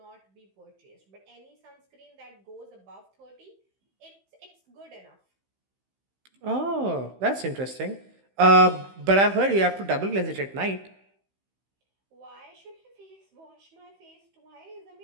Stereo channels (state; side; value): late; left; 15 ms